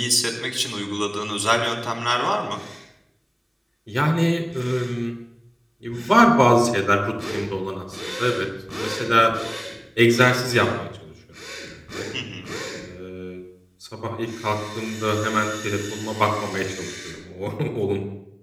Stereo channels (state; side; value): identical; both; correlation 1.00